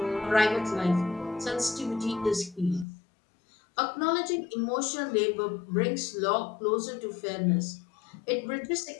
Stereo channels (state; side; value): drops out; right; at 2.9 s